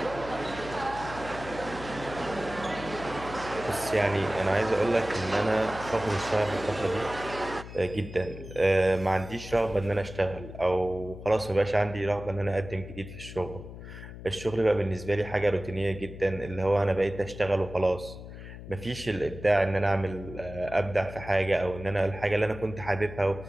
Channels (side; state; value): left; noise; hum, 13 dB below the sound